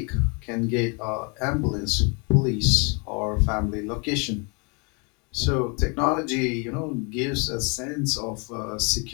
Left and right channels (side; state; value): right; quieter; 33.6 dB